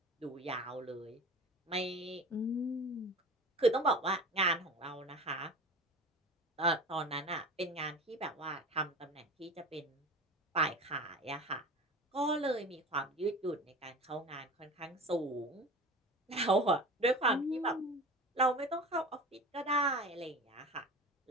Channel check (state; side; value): normal; both; correlation 0.35